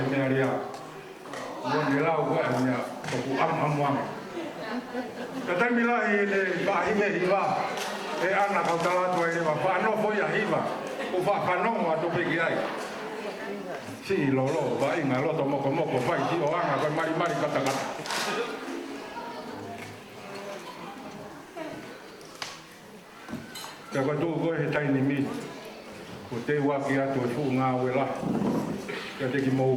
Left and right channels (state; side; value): identical; both; correlation 1.00